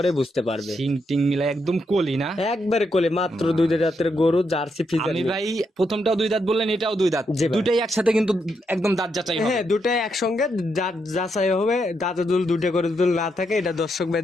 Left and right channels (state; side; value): normal; both; correlation 0.80